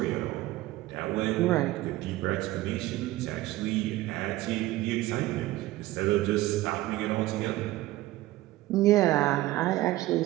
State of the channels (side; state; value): left; quieter; 17.1 dB